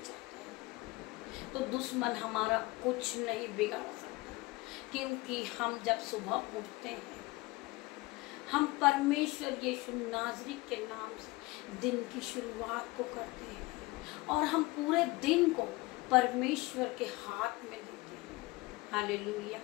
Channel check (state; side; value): quieter; right; 22.2 dB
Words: है तो दुश्मन हमारा कुछ नहीं बिगाड़ सकता, क्योंकि हम जब सुबह उठते हैं, हम परमेश्वर यीशु नाज़री के नाम से दिन की शुरुआत को करते हैं और हम पूरे दिन को परमेश्वर के हाथ में देते हैं। हालेलुया।